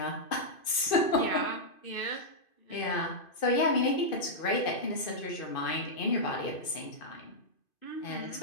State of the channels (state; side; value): late; right; 2.5 ms